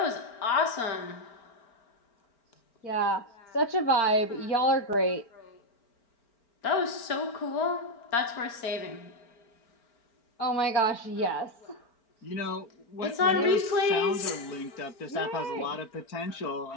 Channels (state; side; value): late; right; 4.4 ms